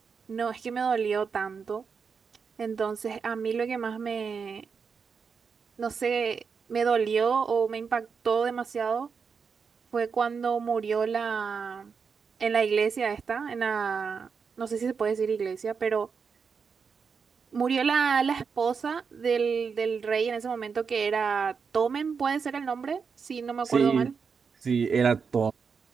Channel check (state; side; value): quieter; left; 5.8 dB